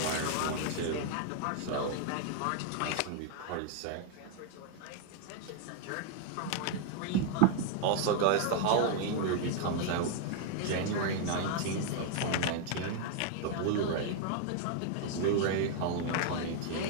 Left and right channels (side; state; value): both; different; correlation 0.00